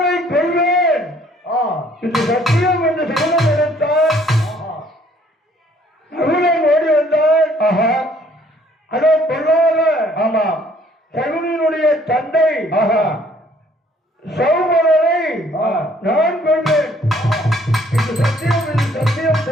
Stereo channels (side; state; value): both; normal; correlation 0.61